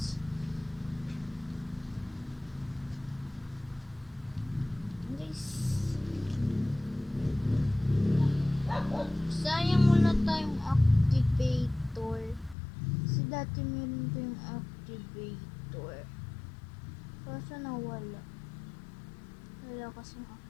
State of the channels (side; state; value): right; drops out; at 12.6 s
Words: Guys. Sayang wala tayong activator. Kasi dati meron ko yung activator. Kaso nawala. Wala kasing